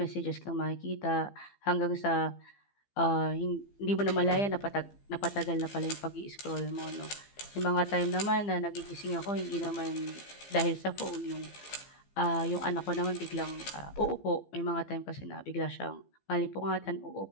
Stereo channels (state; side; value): late; right; 15 ms